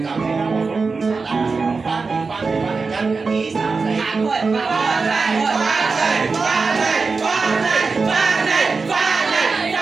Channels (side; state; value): left; quieter; 4.4 dB